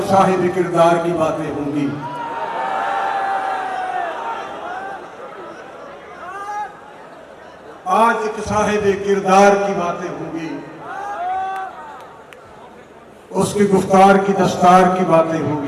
साहिब किरदार की बातें होंगी। आज एक साहिब किरदार की बातें होंगी। उसकी गुफ्तार की दस्तार की बातें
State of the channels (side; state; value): both; identical; correlation 1.00